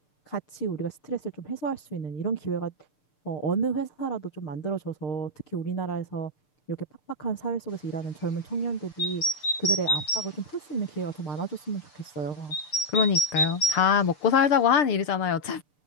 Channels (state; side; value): late; right; 6.7 ms